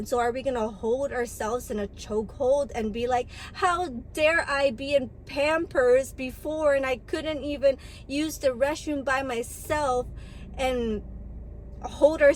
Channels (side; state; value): both; identical; correlation 1.00